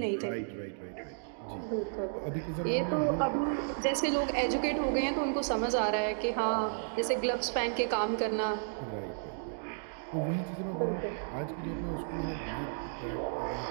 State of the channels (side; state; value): left; silent; digital silence